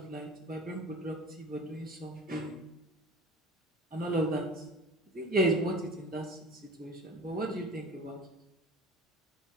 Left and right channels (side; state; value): both; normal; correlation 0.38